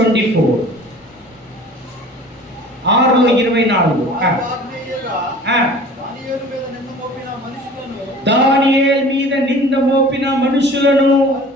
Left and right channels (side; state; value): both; normal; correlation 0.44